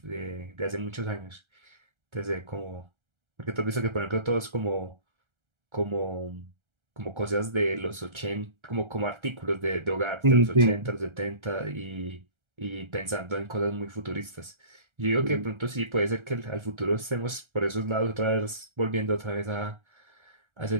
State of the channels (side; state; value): left; late; 1.3 ms